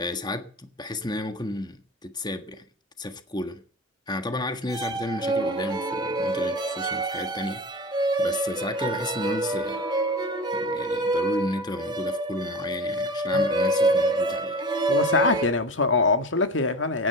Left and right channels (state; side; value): normal; both; correlation 0.32